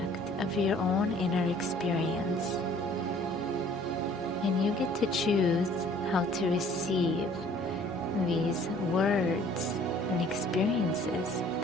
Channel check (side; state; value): both; normal; correlation 0.55